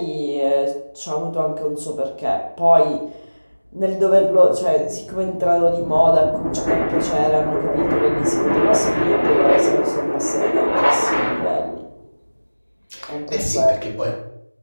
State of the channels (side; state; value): both; inverted; correlation -1.00